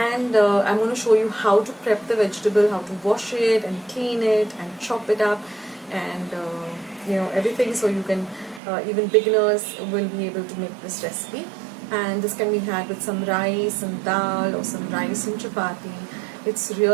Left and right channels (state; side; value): drops out; left; at 8.6 s